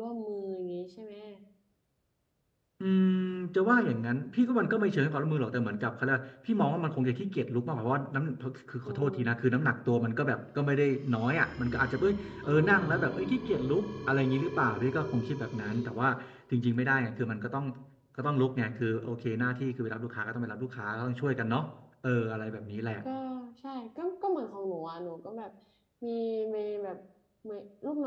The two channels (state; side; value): identical; both; correlation 1.00